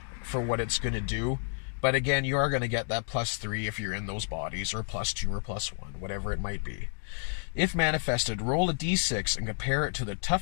for what it's going to do, but again, you are going to get that +3 if you're in those bodies, or +2 or +1, whatever it might be. If manifested, roll a d6 and compare it to the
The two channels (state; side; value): silent; right; 55 dB below the other